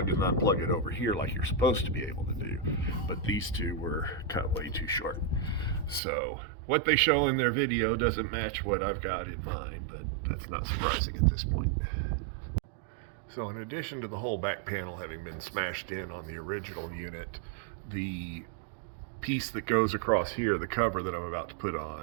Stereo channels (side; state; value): left; drops out; at 6.0 s